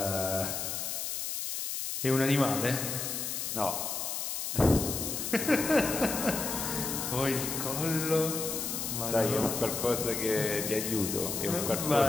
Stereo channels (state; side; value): noise; left; hiss, 3 dB below the sound